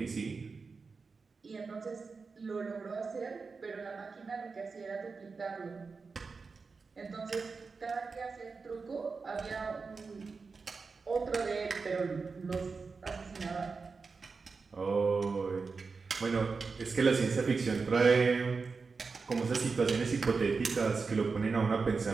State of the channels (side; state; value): left; quieter; 4.6 dB